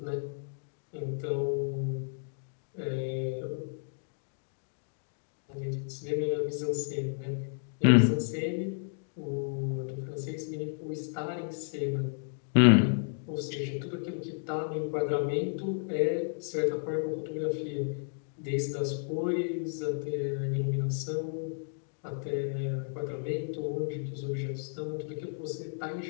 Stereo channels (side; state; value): right; silent; digital silence